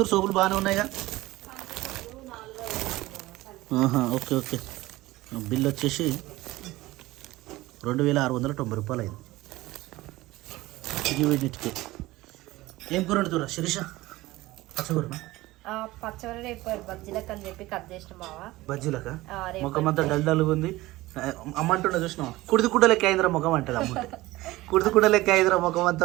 సోపులు బాగానే ఉన్నాయిగా ఓకే ఓకే బిల్ వచ్చేసి 2690 రూపాయలు అయింది ఇది వీటికి ఏం కూర వండుతురా శిరీష పచ్చకూరనా పచ్చడి రేపు బజ్జీలకు అని చెప్పి కట్ చేసిన బావా బజ్జీలక ముఖం అంతా డల్గా ఉంది అమ్మంటుండే చూసినావా కుడిది లెక్క అయిందిరా ముఖం అంటది అమ్మ కుడిది లెక్క అయిందిరా ముఖం అంతా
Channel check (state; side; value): quieter; left; 18.6 dB